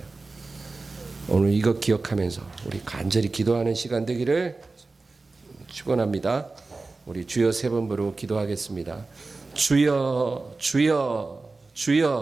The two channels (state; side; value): quieter; left; 3.6 dB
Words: 오늘 이거 기억하면서 우리 간절히 기도하는 시간 되기를 축원합니다. 우리 주여 3번 부르고 기도하겠습니다. 주여 주여